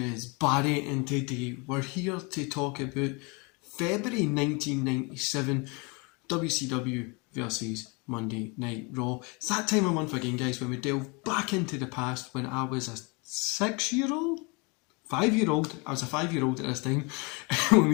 Barry and today we're here to talk about February 1997 WCW versus Monday Night Raw. It's that time of month again, guys, when we delve back into the past when I was a 6-year-old? 5-year-old. I was a 5-year-old at this time. When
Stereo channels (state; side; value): quieter; right; 30.1 dB